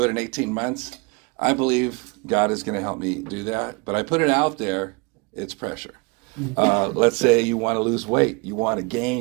it in 18 months. I believe God is going to help me do that. But I put it out there, it's pressure. Let's say you want to lose weight. You want to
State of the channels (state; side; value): quieter; left; 28.9 dB